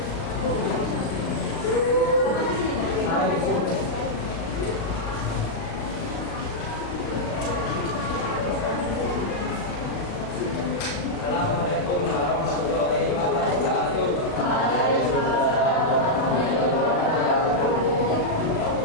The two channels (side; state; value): right; late; 36 ms